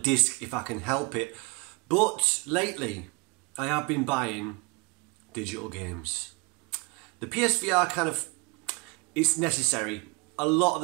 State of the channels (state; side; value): quieter; left; 29.7 dB